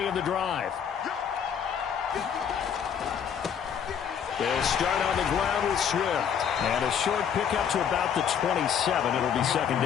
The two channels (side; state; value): right; quieter; 8.0 dB